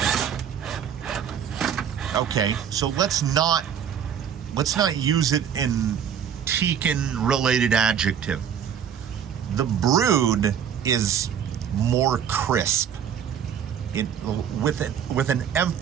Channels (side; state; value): left; quieter; 8.4 dB